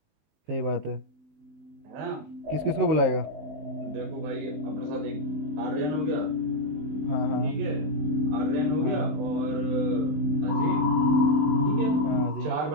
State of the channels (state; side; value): late; left; 19 ms